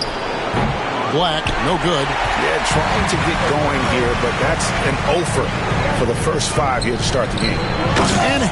Black, no good. Yeah, trying to get going here, but that's an offer for the first 5 here to start the game. And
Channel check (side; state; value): both; identical; correlation 1.00